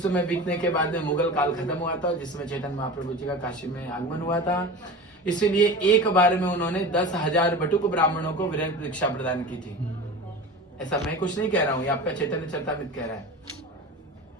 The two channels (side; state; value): both; normal; correlation 0.32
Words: समय बीतने के बाद में मुगल काल खत्म हुआ था, जिसमें चैतन्य महाप्रभु जी का काशी में आगमन हुआ था। इसीलिए एक बार में उन्होंने 10,000 बटुक ब्राह्मणों को विरक्त दीक्षा प्रदान की थी। ऐसा मैं कुछ नहीं कह रहा हूं, ये आपका चैतन्य चरितामृत कह रहा है।